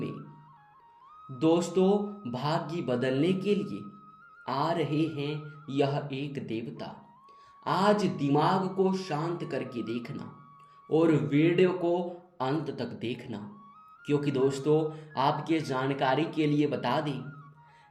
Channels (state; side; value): identical; both; correlation 1.00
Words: दोस्तों, भाग्य बदलने के लिए आ रहे हैं यह एक देवता। आज दिमाग को शांत करके देखना और वीडियो को अंत तक देखना, क्योंकि दोस्तों आपके जानकारी के लिए बता दें,